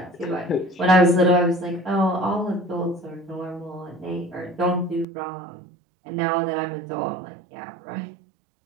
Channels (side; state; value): left; drops out; at 5.1 s